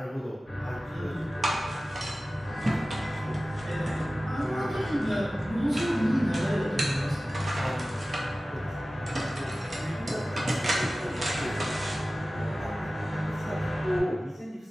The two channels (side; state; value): both; normal; correlation 0.96